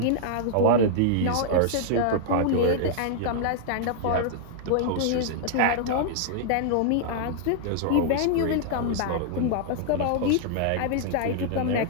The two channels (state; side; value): different; both; correlation -0.01